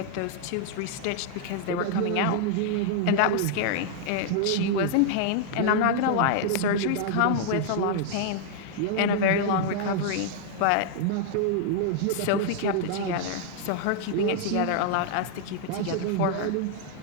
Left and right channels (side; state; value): both; different; correlation -0.01